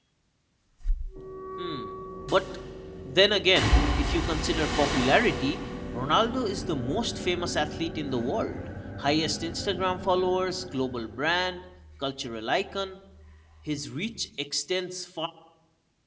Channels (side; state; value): both; identical; correlation 1.00